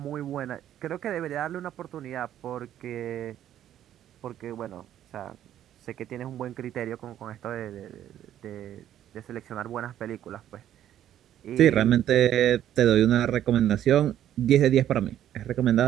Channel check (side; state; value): left; quieter; 11.3 dB